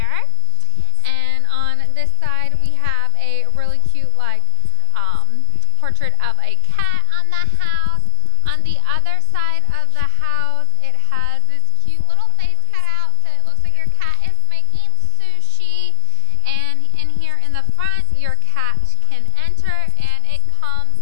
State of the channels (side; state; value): both; different; correlation 0.00